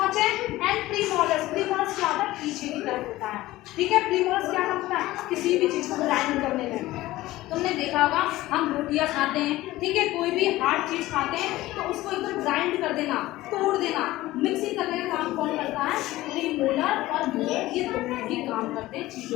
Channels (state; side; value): quieter; right; 17.2 dB